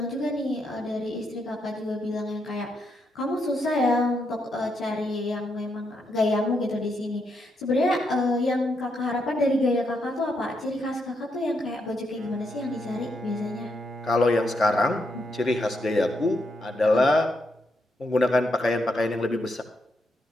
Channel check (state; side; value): normal; both; correlation 0.80